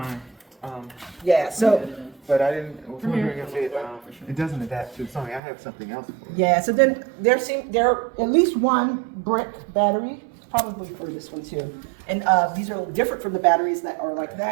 Yeah. So. But I didn't. I was wondering if it doesn't adapt to Sony. I have something else for it. Yeah, so then there are at least one brick battery, probably for this one too. And these are different from the batteries that are like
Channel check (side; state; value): left; drops out; at 5.4 s